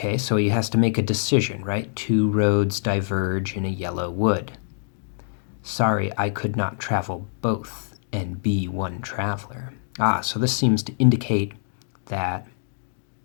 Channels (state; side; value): silent; right; digital silence